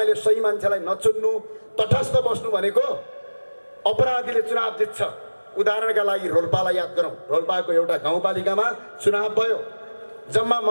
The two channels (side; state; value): both; inverted; correlation -1.00